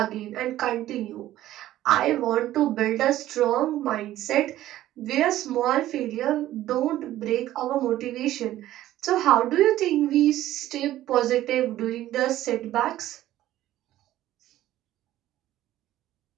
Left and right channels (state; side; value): quieter; left; 14.1 dB